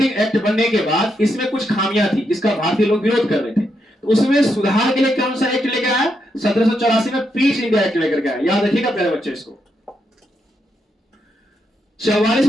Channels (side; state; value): both; normal; correlation 0.81